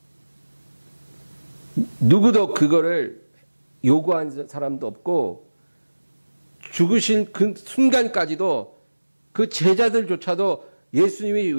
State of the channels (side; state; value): both; inverted; correlation -1.00